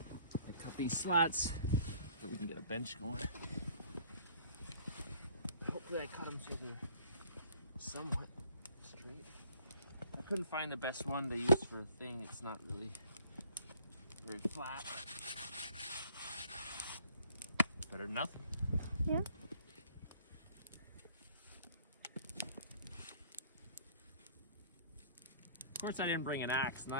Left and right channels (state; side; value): inverted; both; correlation -0.56